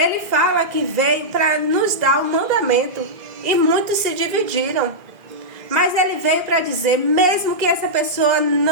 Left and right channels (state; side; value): late; left; 2.0 ms